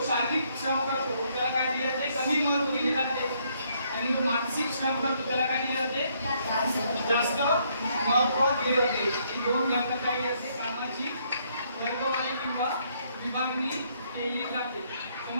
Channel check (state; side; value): inverted; both; correlation -0.70